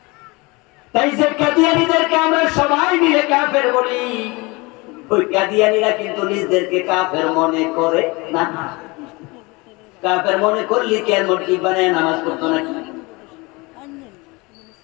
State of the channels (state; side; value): quieter; right; 25.3 dB